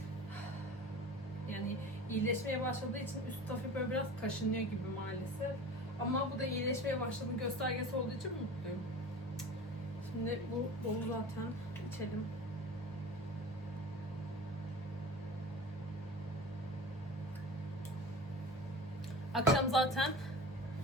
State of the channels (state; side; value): normal; both; correlation 0.36